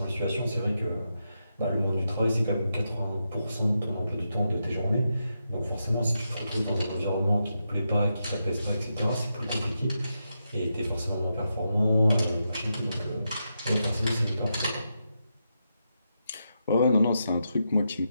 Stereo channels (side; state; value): both; inverted; correlation -0.85